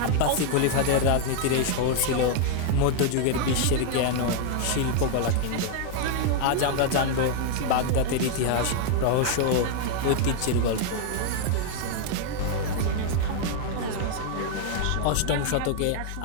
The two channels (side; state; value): both; different; correlation 0.00